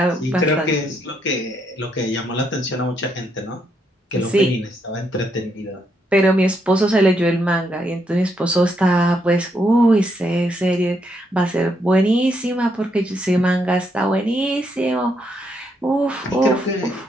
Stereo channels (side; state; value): both; normal; correlation 0.77